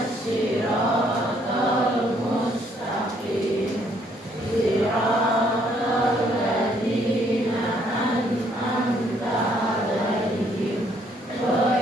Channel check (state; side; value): normal; both; correlation 0.67